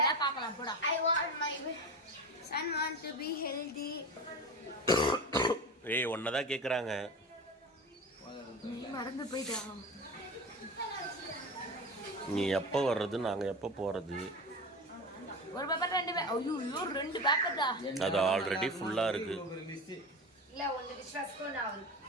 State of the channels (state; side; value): normal; both; correlation 0.27